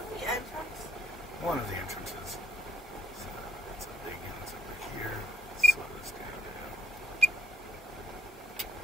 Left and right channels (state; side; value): normal; both; correlation 0.72